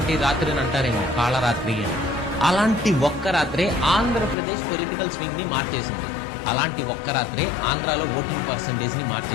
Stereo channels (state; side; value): drops out; right; at 4.4 s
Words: రాత్రిని అంటారేమో కాళరాత్రి అని. అలాంటి ఒక్క రాత్రే ఆంధ్రప్రదేశ్ పొలిటికల్ స్వింగ్ ని మార్చేసింది. అలాంటి ఒక్క రాత్రే ఆంధ్రాలో ఓటింగ్ పర్సంటేజ్ ని